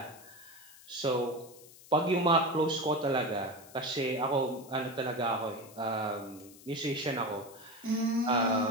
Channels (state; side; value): noise; left; hiss, 21 dB below the sound